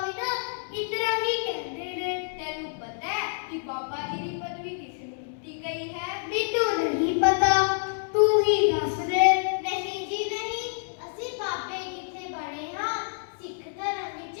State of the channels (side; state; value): right; silent; digital silence